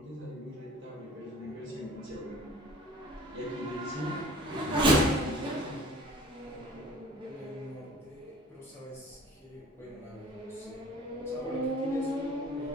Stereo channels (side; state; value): both; normal; correlation 0.46